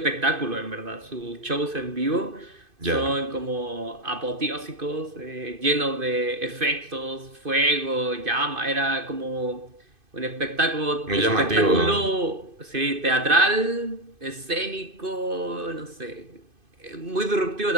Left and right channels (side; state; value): left; late; 2.5 ms